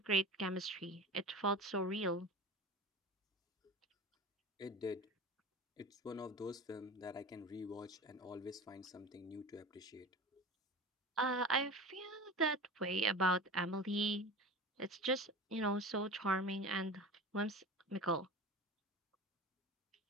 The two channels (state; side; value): normal; both; correlation 0.33